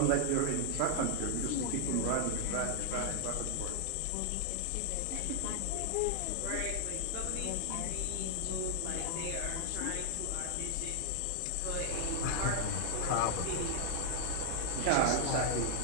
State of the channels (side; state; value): both; different; correlation 0.00